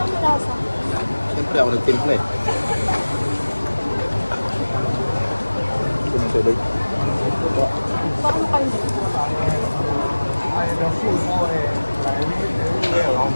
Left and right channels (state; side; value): inverted; both; correlation -1.00